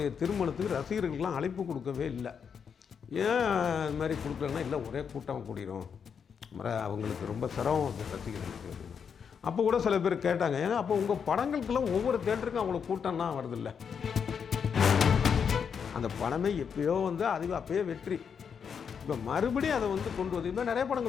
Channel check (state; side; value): quieter; right; 6.8 dB